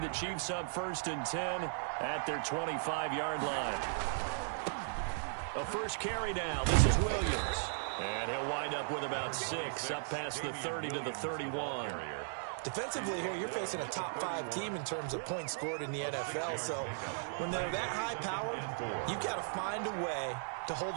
the Chiefs up 1st and 10 at their 25-yard line. A first carry now. This is Williams. And he'll wind up with about 6 up past the 30 to the 31. Defensively here, you're facing a top 5 team in terms of points scored in the NFL. So when they're that high powered, you've got to find a way to hold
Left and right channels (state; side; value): silent; left; digital silence